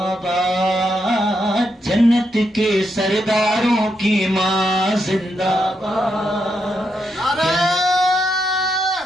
باد، جنت کے سرداروں کی ماں زندہ باد۔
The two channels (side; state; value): both; normal; correlation 0.81